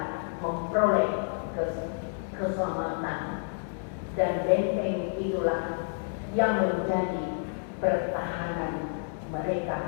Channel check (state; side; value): silent; right; 57 dB below the other